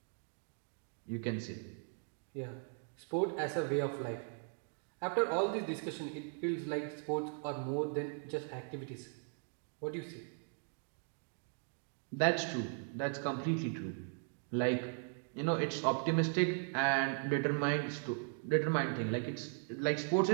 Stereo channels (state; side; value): silent; left; 52 dB below the other